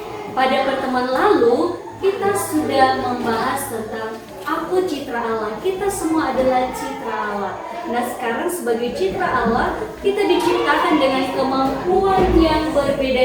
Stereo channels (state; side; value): identical; both; correlation 1.00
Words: Pada pertemuan lalu kita sudah membahas tentang aku citra Allah. Kita semua adalah citra Allah. Nah, sekarang sebagai citra Allah, kita diciptakan dengan kemampuan yang